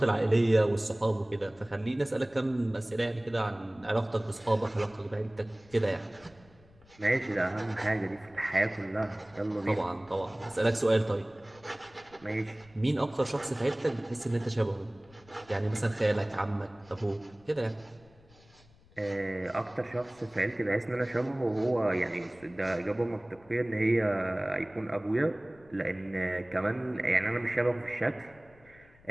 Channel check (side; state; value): left; noise; rumble, 27 dB below the sound